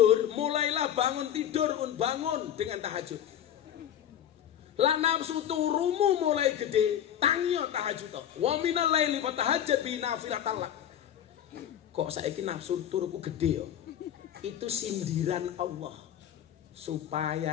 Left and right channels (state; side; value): quieter; right; 10.3 dB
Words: mulailah bangun dengan tahajud. La nafsu turumu mulai gede, tangyo tahajud. Wa minal laili fatahajjat bi nafilatan lak. Kok saiki nafsu turuku gede yo? Itu sindiran Allah.